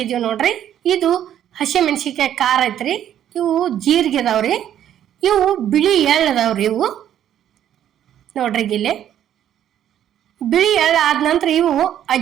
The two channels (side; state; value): left; quieter; 10.7 dB